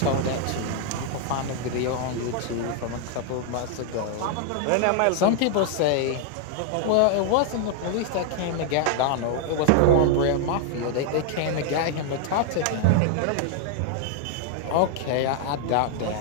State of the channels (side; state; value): both; different; correlation 0.00